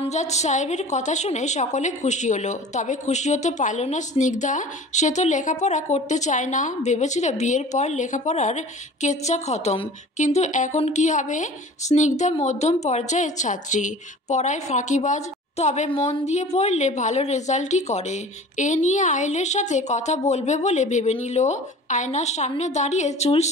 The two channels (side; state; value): both; normal; correlation 0.42